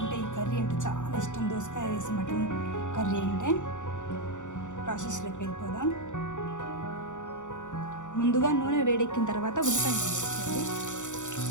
ఈ కర్రీ అంటే చాలా ఇష్టం, దోసకాయ వేసి మటన్ కర్రీ అంటే. ప్రాసెస్లోకి వెళ్ళిపోదాం. ముందుగా నూనె వేడెక్కిన తర్వాత ఉల్లిపాయ వేసుకోవాలి.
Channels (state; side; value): late; right; 0.85 ms